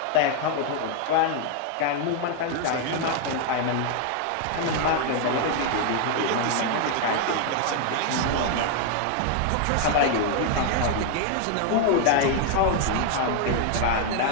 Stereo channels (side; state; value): both; different; correlation 0.00